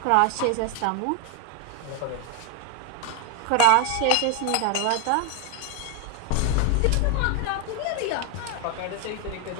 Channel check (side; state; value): both; different; correlation 0.01